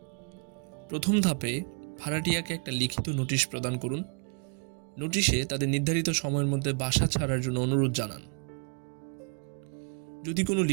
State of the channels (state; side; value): quieter; left; 38.2 dB